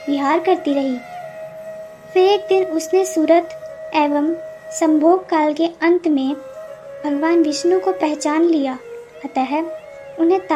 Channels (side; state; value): both; identical; correlation 1.00